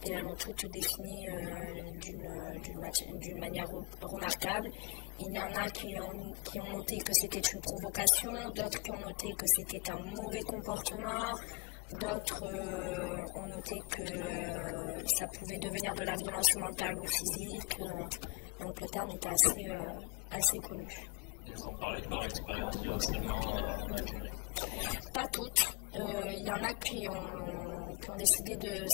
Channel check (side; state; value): right; quieter; 29.0 dB